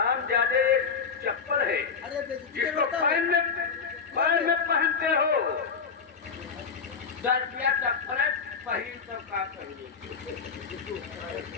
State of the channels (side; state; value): right; quieter; 5.7 dB